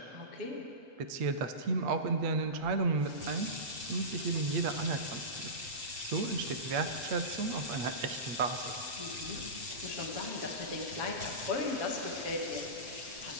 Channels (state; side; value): late; left; 7.7 ms